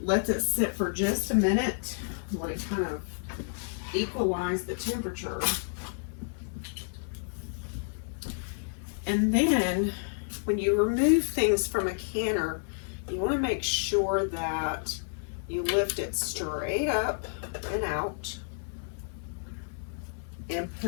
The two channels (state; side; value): silent; right; 58 dB below the other